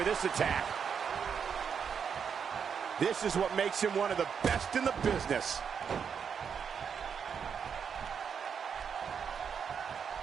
this attack. This is what makes him one of the best in the business.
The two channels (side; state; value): left; quieter; 6.9 dB